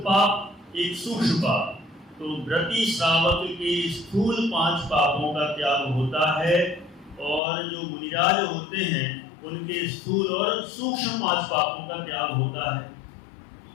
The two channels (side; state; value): right; drops out; at 7.4 s